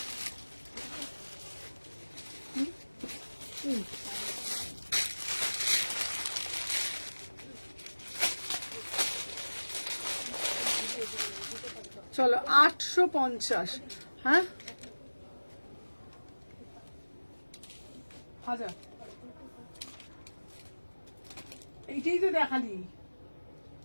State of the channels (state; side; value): inverted; both; correlation -1.00